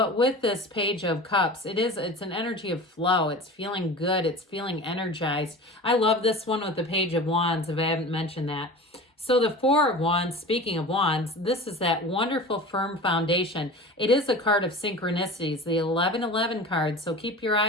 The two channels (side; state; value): both; normal; correlation 0.35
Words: with this Page of Cups, it's an energy of flow. It's feeling good. It's feeling energized. I love this one with the Page of Wands, if I haven't mentioned that. So the 4 of Wands, speaking of Wands, this is that wonderful firm foundation. It is a card of synchronicities, the 1111 card. So keep your